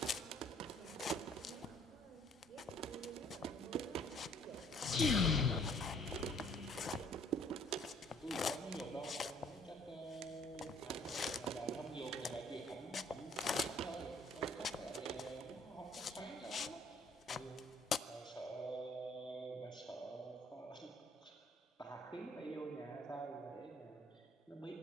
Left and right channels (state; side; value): normal; both; correlation 0.60